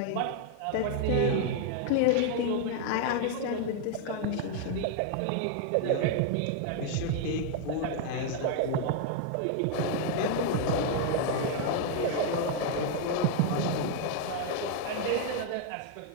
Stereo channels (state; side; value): different; both; correlation 0.00